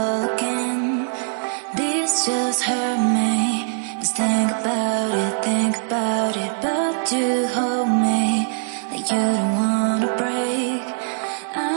again. This just hurt me. Just think about it, but you hold me like you don't wanna break.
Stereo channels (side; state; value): left; silent; digital silence